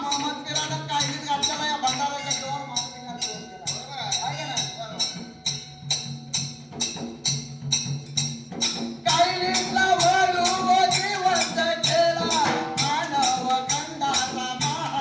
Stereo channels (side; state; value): both; identical; correlation 1.00